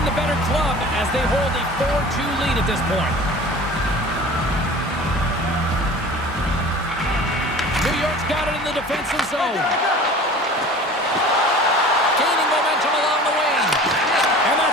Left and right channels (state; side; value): normal; both; correlation 0.41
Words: they hold a 4-2 lead at this point. New York's got it in the defensive zone. Gaining momentum along the wing. And